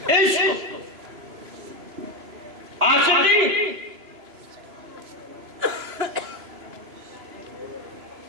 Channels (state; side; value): late; left; 3.0 ms